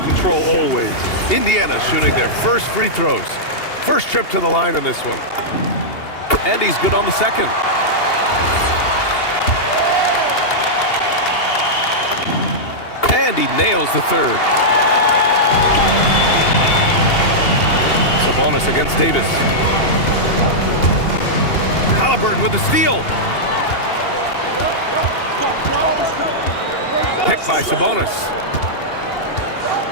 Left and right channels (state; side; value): late; right; 2.8 ms